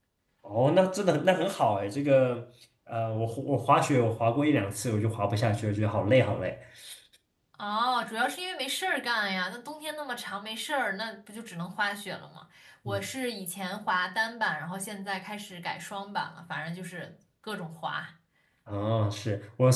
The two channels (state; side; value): identical; both; correlation 1.00